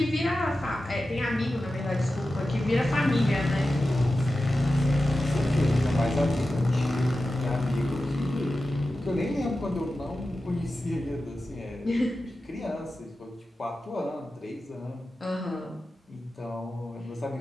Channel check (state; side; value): normal; both; correlation 0.93